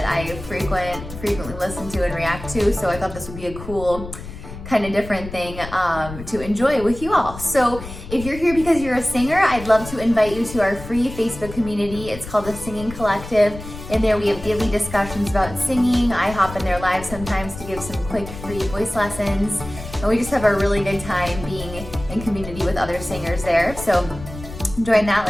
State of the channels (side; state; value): left; noise; rumble, 12 dB below the sound